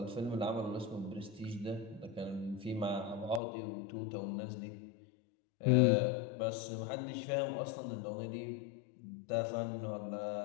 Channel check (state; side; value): drops out; right; at 3.4 s